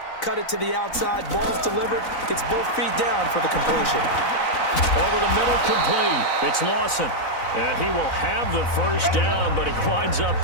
cut it to the outside, ball's delivered, gets both feet down for the completion. Over the middle, complete. It's Lawson. And he will have the 1st down, but he winds up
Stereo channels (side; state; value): right; late; 4.0 ms